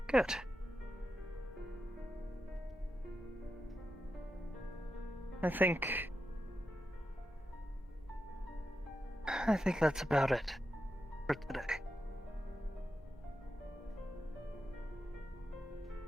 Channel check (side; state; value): both; normal; correlation 0.88